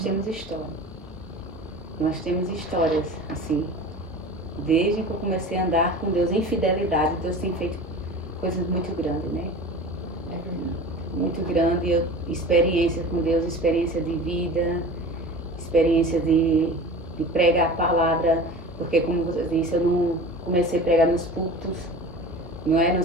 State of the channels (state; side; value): normal; both; correlation 0.36